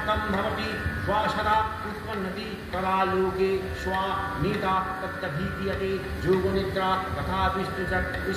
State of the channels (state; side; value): identical; both; correlation 1.00